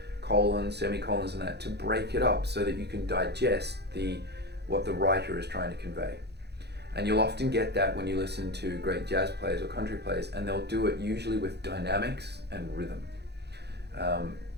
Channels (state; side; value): late; left; 0.48 ms